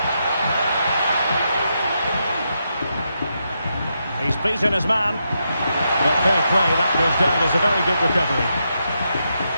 He's beaten his man. But fair play, that goes down as a very good recovery.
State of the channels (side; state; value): both; inverted; correlation -0.83